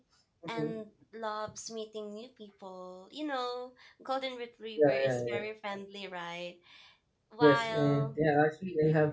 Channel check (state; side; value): identical; both; correlation 1.00